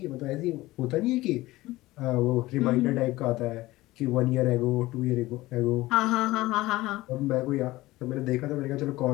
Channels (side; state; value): right; quieter; 18.4 dB